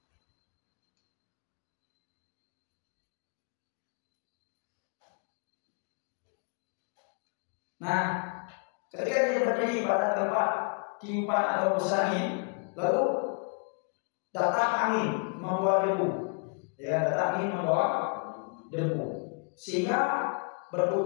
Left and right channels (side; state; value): right; quieter; 39.1 dB